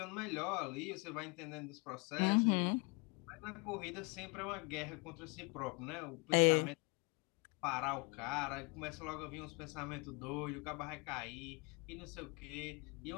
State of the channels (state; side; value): quieter; right; 29.2 dB